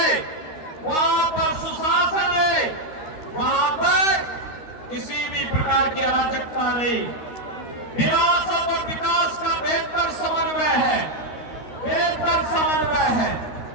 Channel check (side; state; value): right; late; 13 ms